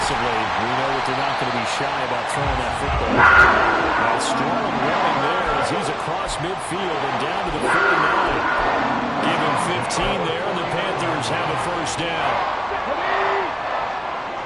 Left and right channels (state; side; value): identical; both; correlation 1.00